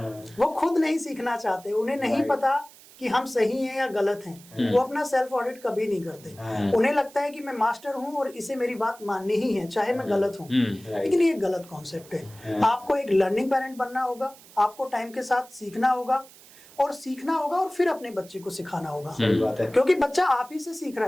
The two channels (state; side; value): noise; right; hiss, 22 dB below the sound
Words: वो खुद नहीं सीखना चाहते, उन्हें नहीं पता कि हम सही हैं या गलत हैं। वो अपना सेल्फ ऑडिट कभी नहीं करते। उन्हें लगता है कि मैं मास्टर हूं और इसे मेरी बात माननी ही है चाहे मैं गलत हूं। लेकिन ये गलत कॉन्सेप्ट है। आपको एक लर्निंग पेरेंट बनना होगा, आपको टाइम के साथ सीखना होगा और फिर अपने बच्चे को सिखाना होगा। सही बात है। क्योंकि बच्चा आप ही से सीख रहा